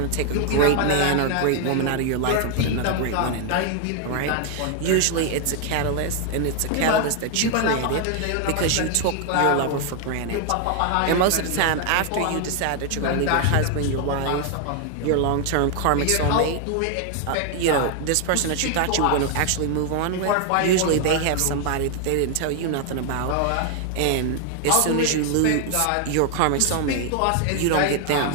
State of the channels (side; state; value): both; different; correlation 0.00